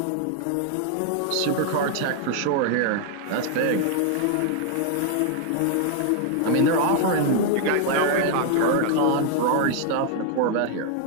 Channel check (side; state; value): both; different; correlation 0.00